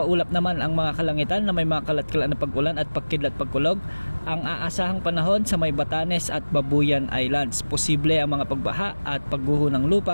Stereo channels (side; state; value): both; inverted; correlation -1.00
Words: naman ang mga kalangitan na may mga kalat-kalat na pag-ulan at pagkidlat pagkulog ang aasahang panahon sa may Batanes at Babuyan Islands. Posible ang mga pagbaha at pagguho ng